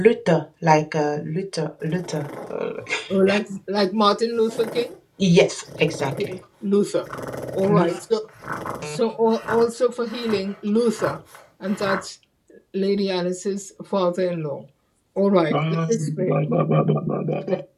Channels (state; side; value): identical; both; correlation 1.00